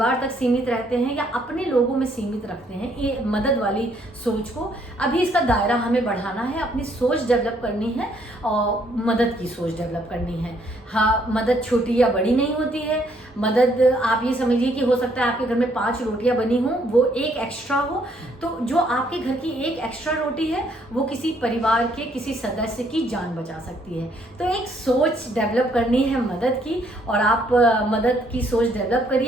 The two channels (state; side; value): normal; both; correlation 0.68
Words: तक सीमित रहते हैं या अपने लोगों में सीमित रखते हैं, ये मदद वाली सोच को, अभी इसका दायरा हमें बढ़ाना है, अपनी सोच डेवलप करनी है और मदद की सोच डेवलप करनी है। हाँ, मदद छोटी या बड़ी नहीं होती है। मदद आप ये समझिए कि हो सकता है आपके घर में 5 रोटियां बनी हों, वो एक एक्स्ट्रा हो, तो जो आपके घर की एक एक्स्ट्रा रोटी है वो किसी परिवार के किसी सदस्य की जान बचा सकती है। तो एक सोच डेवलप करनी है मदद की, और आप मदद की सोच डेवलप